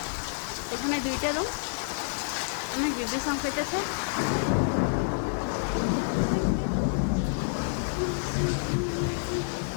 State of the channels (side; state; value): right; silent; 59 dB below the other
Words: এখানে দুইটা রুম অনেক বিদ্যুৎ সংকেতেছে